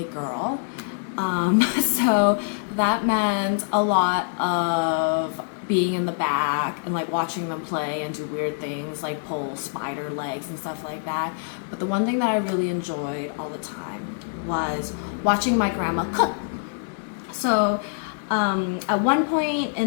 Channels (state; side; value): silent; right; digital silence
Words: girl. So that meant a lot of being in the back and like watching them play and do weird things like pull spider legs and stuff like that. But the one thing that I really enjoyed all the time was watching my grandma cook. So, at one point